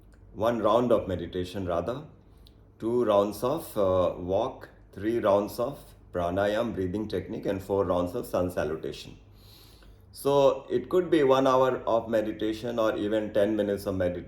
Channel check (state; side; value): identical; both; correlation 1.00